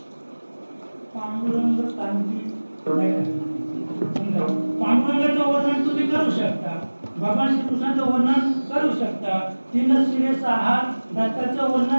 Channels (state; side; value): inverted; both; correlation -1.00